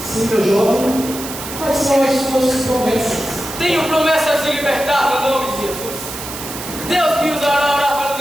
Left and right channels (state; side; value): noise; right; hiss, 10 dB below the sound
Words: Sim, meu jovem. Quais são as suas promessas? Tenho promessas de libertar no nome de Jesus. Deus me usará a orar